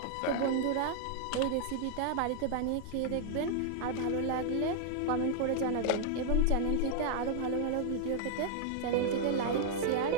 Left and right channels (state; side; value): different; both; correlation -0.01